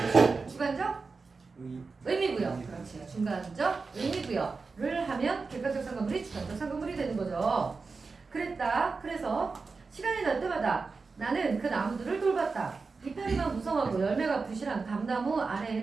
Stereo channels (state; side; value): quieter; left; 4.4 dB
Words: 주관적 의미부여. 그렇지. 중간적 의미부여를 하면 객관적 상관물이 주관적 상관물이 되는 거죠. 그랬다. 그래서 시간이 날 때마다 나는 그 나무들을 돌봤다. 이파리만 무성하고 열매가 부실한 감나무